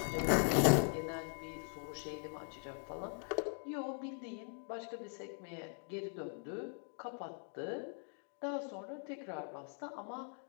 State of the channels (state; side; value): silent; right; 50 dB below the other